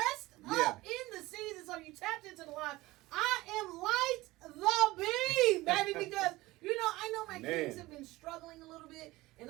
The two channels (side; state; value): left; quieter; 19.2 dB